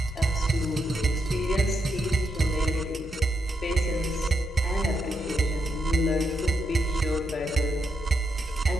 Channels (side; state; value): both; normal; correlation 0.81